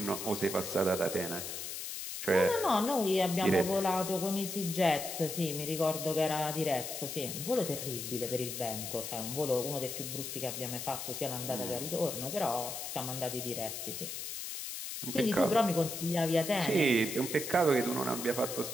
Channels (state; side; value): noise; left; hiss, 6 dB below the sound